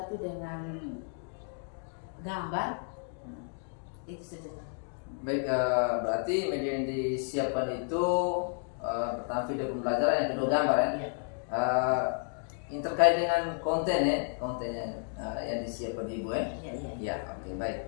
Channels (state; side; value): silent; right; 56 dB below the other